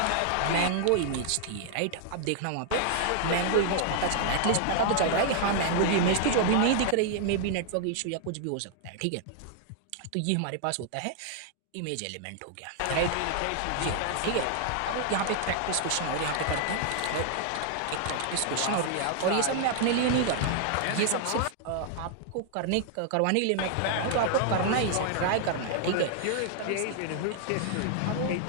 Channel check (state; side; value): different; both; correlation 0.00